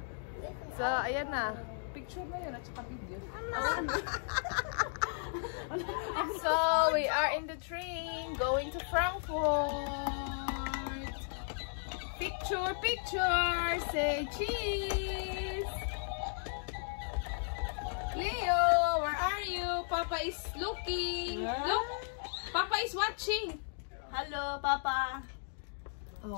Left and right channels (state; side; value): silent; right; digital silence